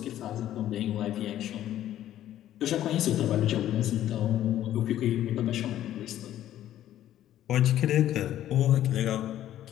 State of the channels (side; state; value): right; quieter; 12.4 dB